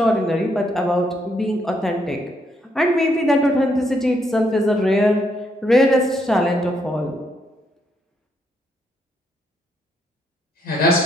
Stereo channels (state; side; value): normal; both; correlation 0.75